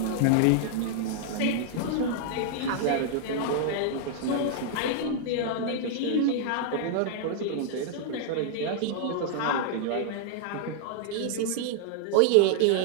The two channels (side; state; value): both; different; correlation 0.00